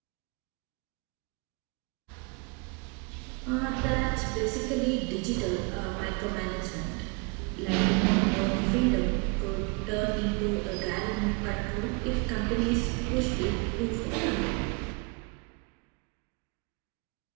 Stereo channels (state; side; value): quieter; left; 32.3 dB